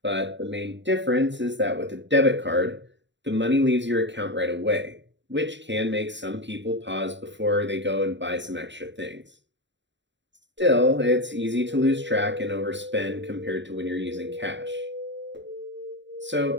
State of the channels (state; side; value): late; left; 0.53 ms